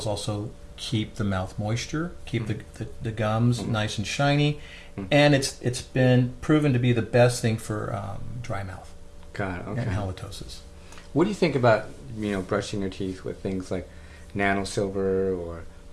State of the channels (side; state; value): both; identical; correlation 1.00